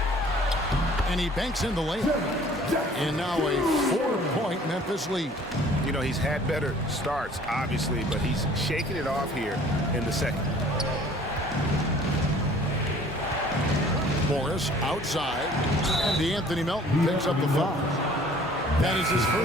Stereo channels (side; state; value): both; normal; correlation 0.52